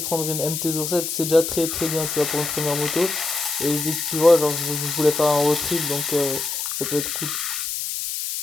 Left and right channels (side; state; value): left; noise; hiss, 3 dB below the sound